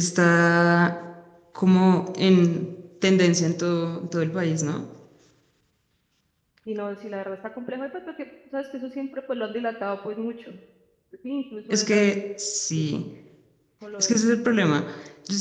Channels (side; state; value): both; identical; correlation 1.00